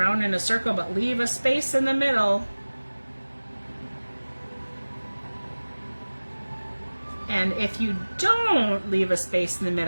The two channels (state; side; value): inverted; both; correlation -1.00